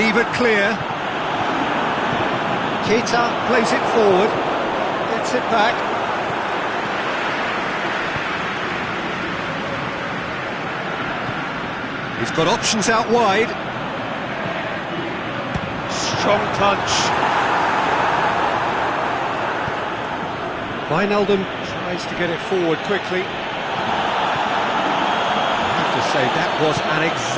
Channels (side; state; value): both; identical; correlation 1.00